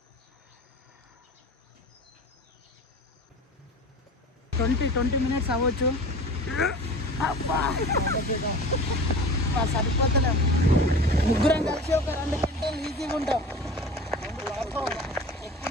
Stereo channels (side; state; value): both; normal; correlation 0.37